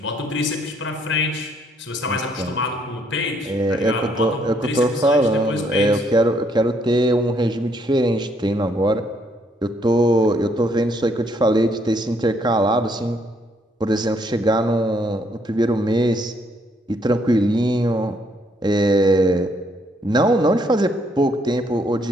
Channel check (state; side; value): normal; both; correlation 0.69